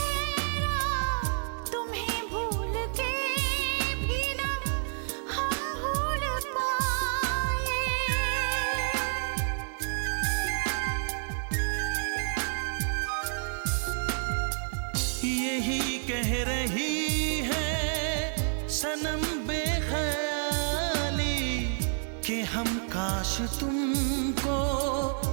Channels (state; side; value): silent; left; digital silence